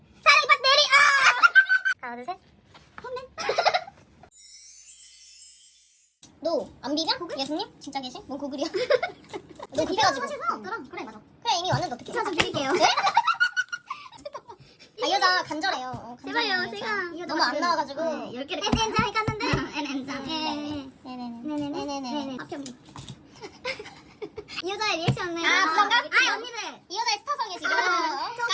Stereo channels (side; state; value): both; identical; correlation 1.00